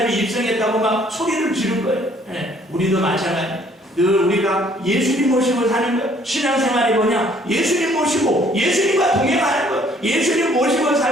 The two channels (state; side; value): normal; both; correlation 0.61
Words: 입성했다고 막 소리를 지른 거예요. 우리도 마찬가지. 늘 우리가 예수님 모시고 사는 거예요. 신앙생활이 뭐냐? 예수님 모시고 예수님과 동행하는 거예요. 예수님 모시고